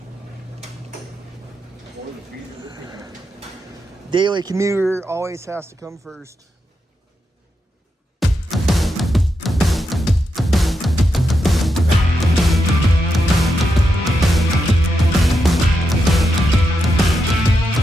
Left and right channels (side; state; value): both; normal; correlation 0.85